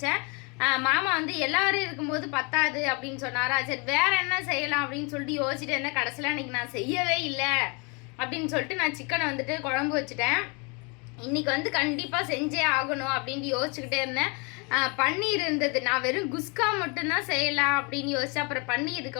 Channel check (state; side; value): quieter; right; 31.7 dB